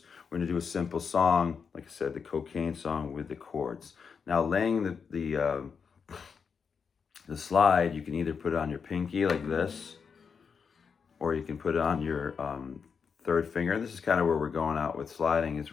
to do a simple song, like I said, the Cocaine song with the chords. Now laying the slide, you can either put it on your pinky like this, or you can put it on your 3rd finger. This is kind of where we're going out with sliding, is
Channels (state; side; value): quieter; right; 6.1 dB